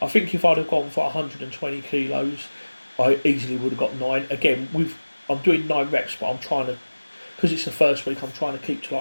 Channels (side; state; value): both; inverted; correlation -1.00